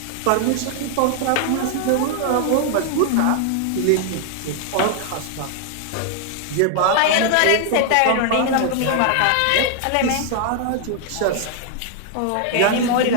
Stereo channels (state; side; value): different; both; correlation 0.00